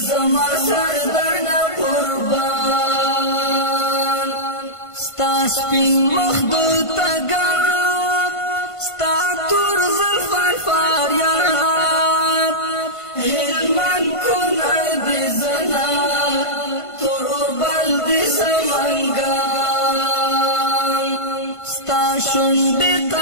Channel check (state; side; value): late; right; 1.5 ms